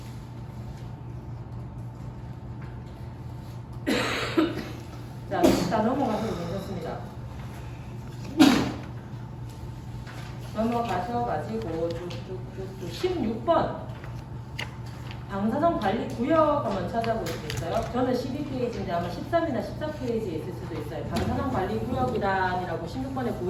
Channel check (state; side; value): identical; both; correlation 1.00